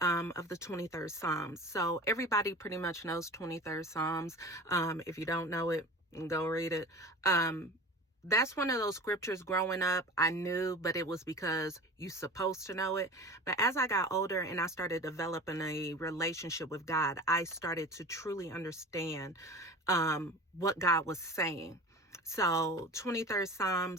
of the 23rd Psalms. So everybody pretty much knows 23rd Psalms. If you don't know it, go read it. That's one of those scriptures growing up I knew, but it was because you're supposed to know it. But as I got older and I started developing a relationship with God, I started to truly understand what God was saying. So 23rd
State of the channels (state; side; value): normal; both; correlation 0.36